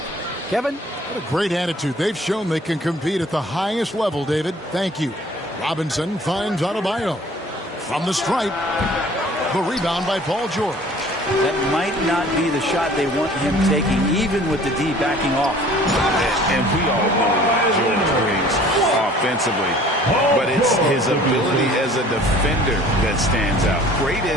Kevin? What a great attitude. They've shown they can compete at the highest level, David. Thank you. Robinson finds Adebayo. From the stripe. The rebound by Paul George. That might not be the shot they want him taking, even with the D backing off. And we all know what George brings offensively. But it's his ability as a defender that stands out. Great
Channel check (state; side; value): normal; both; correlation 0.51